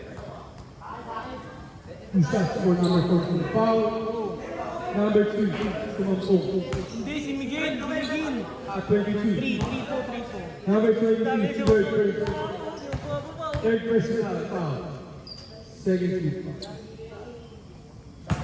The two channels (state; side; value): identical; both; correlation 1.00